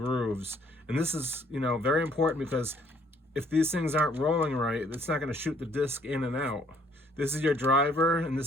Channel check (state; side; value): normal; both; correlation 0.63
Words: And this is, you know, very important, because if these things aren't rolling right, it's not going to shoot the disc in and out. This is your driver, and